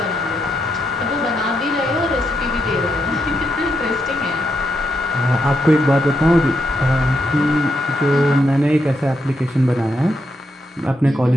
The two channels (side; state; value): both; normal; correlation 0.81